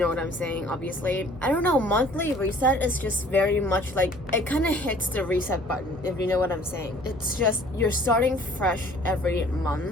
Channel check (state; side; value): noise; right; hum, 20 dB below the sound